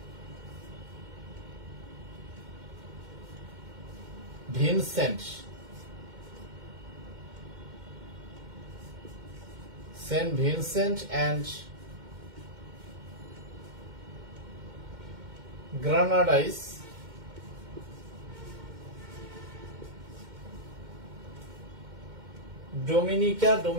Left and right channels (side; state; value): left; late; 2.1 ms